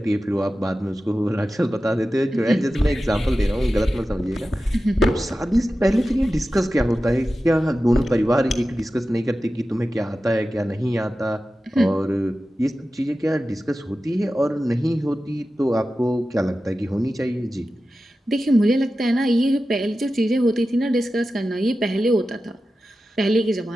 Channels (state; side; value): normal; both; correlation 0.94